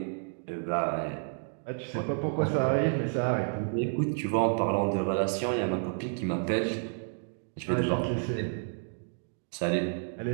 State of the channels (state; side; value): silent; left; digital silence